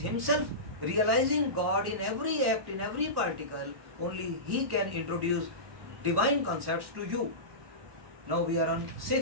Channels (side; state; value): left; late; 1.1 ms